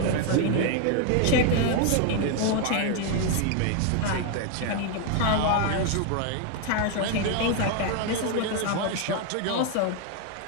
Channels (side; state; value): both; different; correlation 0.01